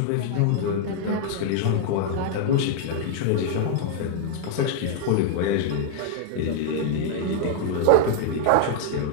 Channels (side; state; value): both; different; correlation 0.00